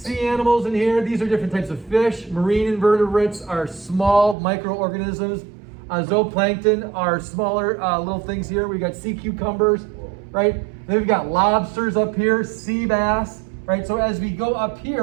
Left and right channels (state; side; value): drops out; left; at 4.4 s